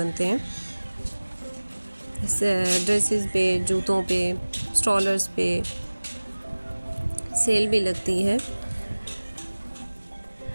हैं। ड्रेसेस पे, जूतों पे, स्ट्रॉलर्स पे सेल भी लगती है।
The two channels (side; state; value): both; inverted; correlation -1.00